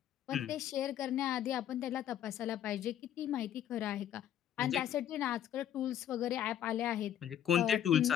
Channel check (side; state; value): right; quieter; 10.5 dB